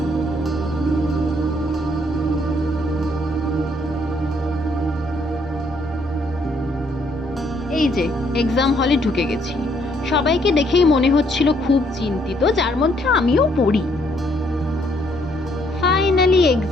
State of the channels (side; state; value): both; normal; correlation 0.69